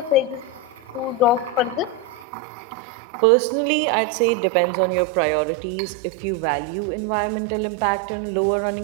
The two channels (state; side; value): drops out; left; at 2.2 s